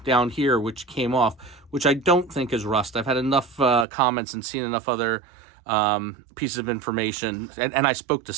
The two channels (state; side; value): drops out; left; at 3.9 s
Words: down here, which came off, which I don't think is rust. I've had enough comments and seen enough other pieces of information, and I spoke to